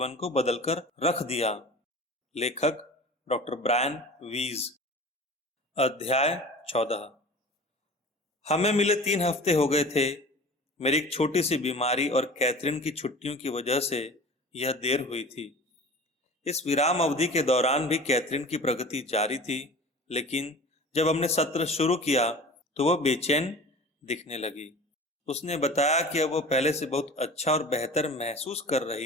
को बदलकर रख दिया। लेखक डॉक्टर ब्रायन वीज। अध्याय 14। हमें मिले 3 हफ्ते हो गए थे। मेरी एक छोटी सी बीमारी और कैथरीन की छुट्टियों की वजह से यह देर हुई थी। इस विराम अवधि के दौरान भी कैथरीन की प्रगति जारी थी, लेकिन जब हमने सत्र शुरू किया तो वह बेचैन दिखने लगी। उसने बताया कि अब वह पहले से बहुत अच्छा और बेहतर महसूस कर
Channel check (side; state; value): both; normal; correlation 0.39